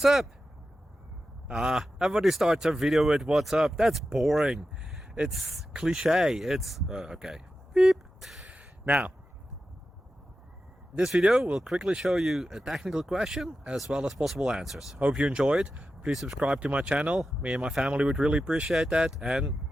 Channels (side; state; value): both; normal; correlation 0.92